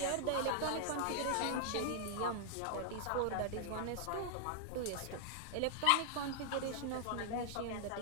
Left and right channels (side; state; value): both; different; correlation -0.01